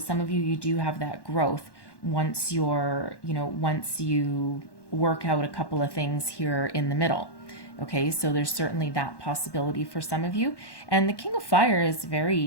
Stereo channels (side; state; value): right; late; 1.1 ms